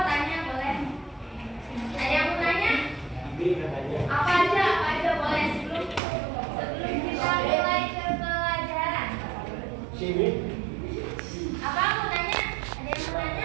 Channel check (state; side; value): drops out; left; at 6.0 s